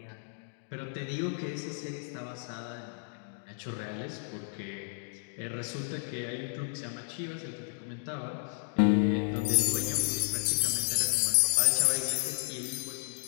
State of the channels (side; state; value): right; silent; digital silence